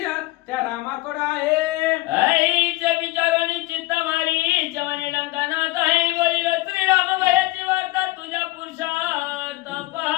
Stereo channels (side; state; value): right; quieter; 20.4 dB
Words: त्या रामाकडे आहे. आईच्या विचाराने चित्त मारी जवानी लंकानाथ आहे बोलिलो श्रीराम भयाची वार्ता तुझ्या पुरुषार्थ